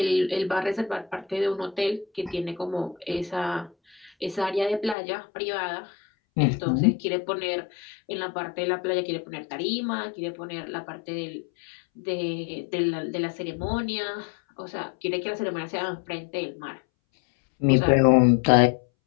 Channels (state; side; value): drops out; right; at 5.0 s